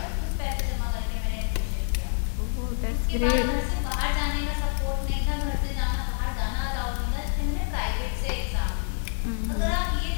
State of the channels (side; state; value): right; silent; digital silence